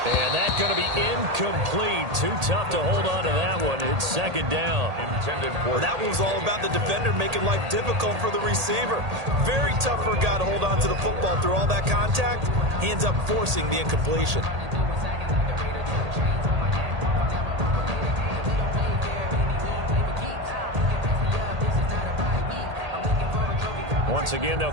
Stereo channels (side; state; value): left; late; 1.8 ms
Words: And that's going to be incomplete. Too tough to hold on to that one. It's second down. Well, that one was all about the defender making life difficult for the receiver. Very tough for a guy to hold on to the football through all that contact. He ends up forcing the incompletion. Once again, they'll